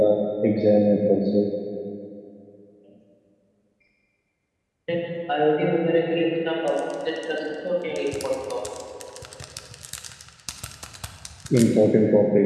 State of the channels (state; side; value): identical; both; correlation 1.00